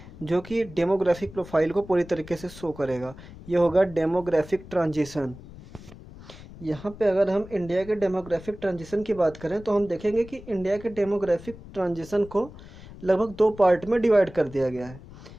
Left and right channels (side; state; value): left; noise; rumble, 17 dB below the sound